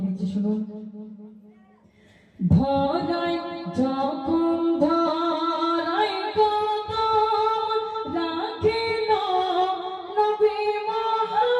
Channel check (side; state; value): both; identical; correlation 1.00